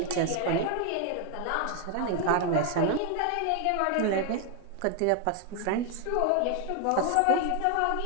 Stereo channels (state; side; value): different; both; correlation 0.01